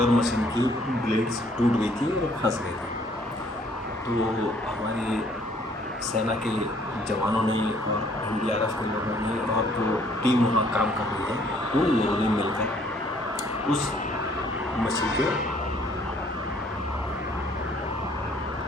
मशीन की ब्लेड्स टूट गई थी और फंस गई थी। तो हमारे सेना के जवानों ने और एनडीआरएफ के लोगों ने और जो टीम वहाँ काम कर रही है उन लोगों ने मिलकर उस मछली के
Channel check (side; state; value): both; normal; correlation 0.61